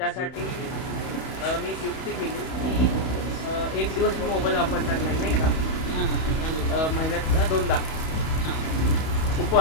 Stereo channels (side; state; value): right; late; 31 ms